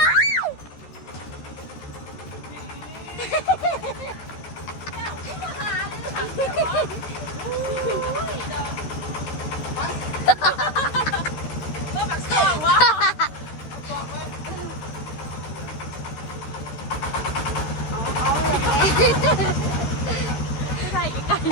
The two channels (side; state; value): right; late; 13 ms